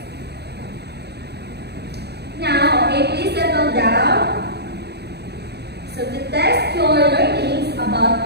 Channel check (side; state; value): left; late; 0.48 ms